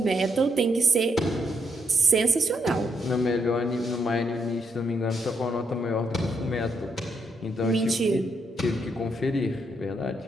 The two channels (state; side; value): normal; both; correlation 0.77